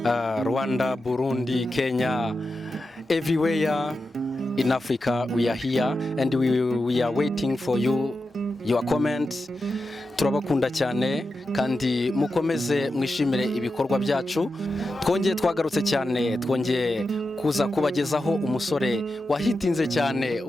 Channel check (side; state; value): both; normal; correlation 0.90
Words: Rwanda, Burundi, Kenya, everywhere in Africa we are here and we are waiting for your comments. Turabakunda cyane kandi mukomeze mwishimire ibikorwa byacu. Twongeye twagarutse cyane, twongeye kuza kubagezaho umusore wahitinze cyane,